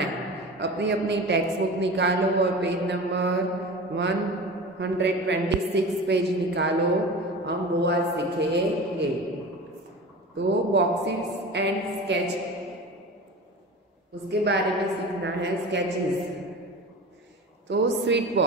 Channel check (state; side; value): normal; both; correlation 0.33